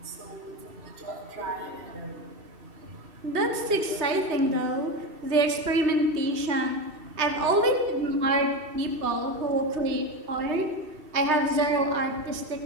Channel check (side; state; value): left; late; 2.7 ms